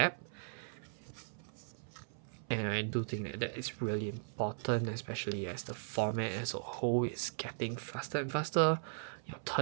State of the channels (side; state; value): left; silent; 52 dB below the other